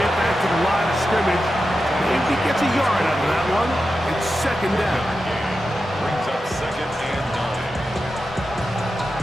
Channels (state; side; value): normal; both; correlation 0.90